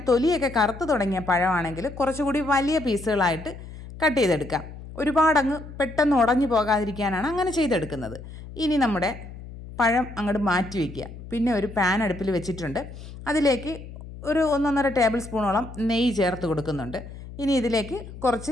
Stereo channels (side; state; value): left; noise; hum, 14 dB below the sound